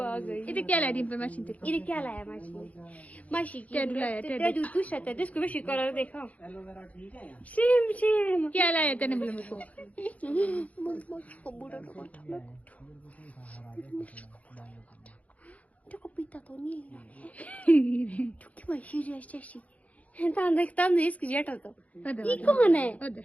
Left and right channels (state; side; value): late; right; 0.069 ms